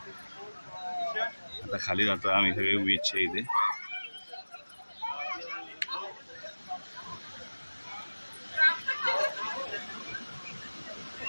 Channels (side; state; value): both; inverted; correlation -1.00